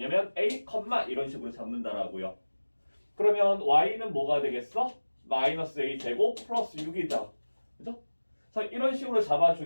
A, 이런 식으로 잡는다라고요. 그러면 Y는 뭐가 되겠어? 마이너스 A 제곱 플러스 6이다. 그죠? 그래서 이런 식으로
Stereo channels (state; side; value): inverted; both; correlation -1.00